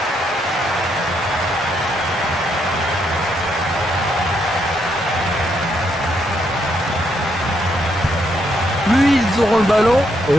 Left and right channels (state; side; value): normal; both; correlation 0.76